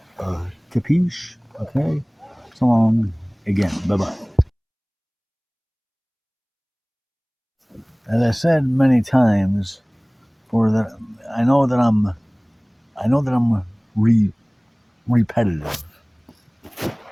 Capiche? Okay. So long again. Bye bye. As I said many times, I know that I'm repetitive,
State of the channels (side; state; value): both; identical; correlation 1.00